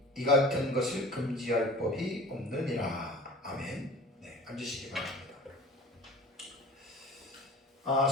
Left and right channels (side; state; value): both; normal; correlation 0.41